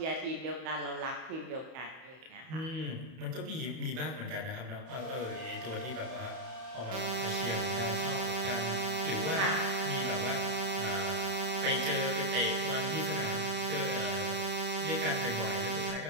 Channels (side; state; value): left; late; 31 ms